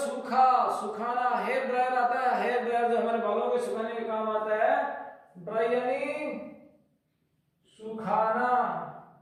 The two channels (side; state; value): both; identical; correlation 1.00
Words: सुखाना। हेयर ड्रायर आता है, हेयर ड्रायर जो हमारे बालों को सुखाने में काम आता है। ड्राई यानी सुखाना।